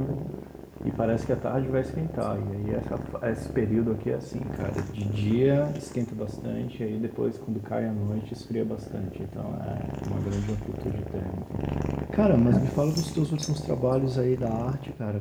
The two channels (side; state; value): both; identical; correlation 1.00